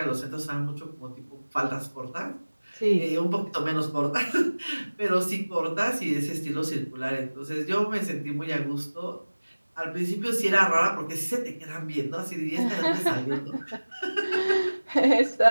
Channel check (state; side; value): inverted; both; correlation -1.00